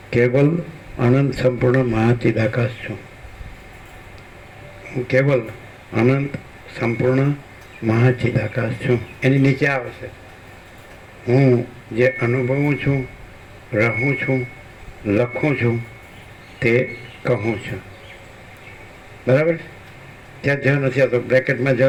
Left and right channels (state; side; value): identical; both; correlation 1.00